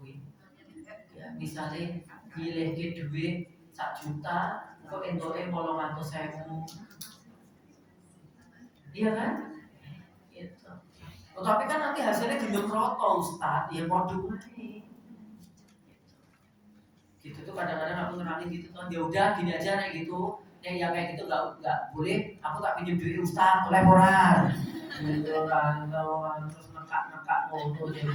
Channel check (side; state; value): both; identical; correlation 1.00